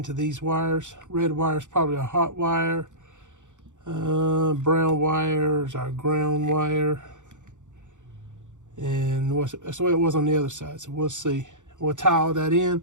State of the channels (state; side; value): late; left; 0.85 ms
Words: these wires. Red wire is probably a hot wire. Brown wire is our ground wire. And that's the way it was on the other side, so we'll see. We'll tie all that in,